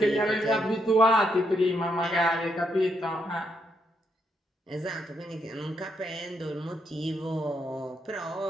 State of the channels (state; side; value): normal; both; correlation 0.78